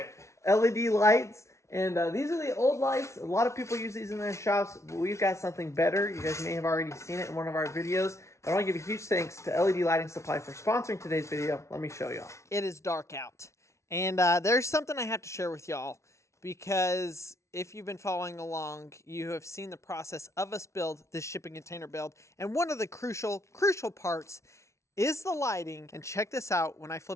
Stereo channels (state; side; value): late; right; 0.14 ms